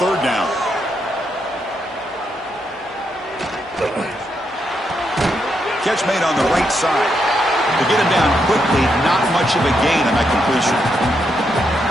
down. Catch made on the right side. To get him down quickly, not much of a gain on that completion.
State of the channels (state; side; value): normal; both; correlation 0.80